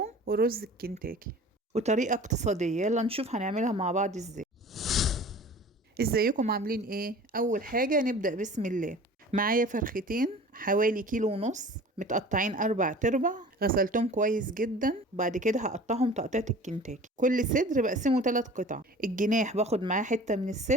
ورز الكنتاكي، وطريقة اقتصادية. يلا نشوف هنعملها مع بعض ازاي. ازيكم عاملين ايه؟ اول حاجة نبدأ بسم الله. معايا فرختين حوالي 1.5 كيلو، متقطعين 4 تربع، غسلتهم كويس جدا. بعد كده هقطعهم تقطيعة الكنتاكي. كل صدر بقسمه 3 قطع. الجناح باخد معاه حتة من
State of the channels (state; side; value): normal; both; correlation 0.43